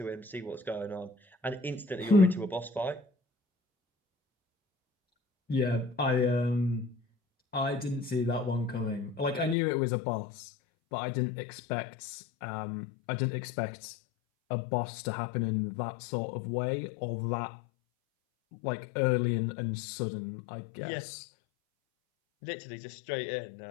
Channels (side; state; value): right; drops out; at 9.6 s